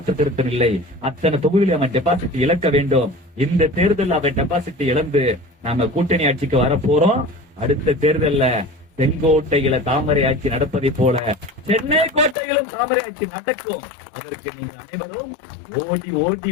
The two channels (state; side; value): drops out; right; at 12.4 s